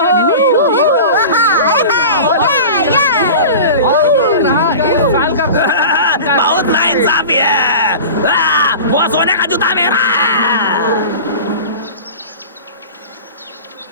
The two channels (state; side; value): inverted; both; correlation -0.34